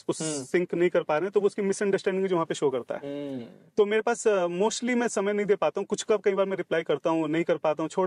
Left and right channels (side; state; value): both; identical; correlation 1.00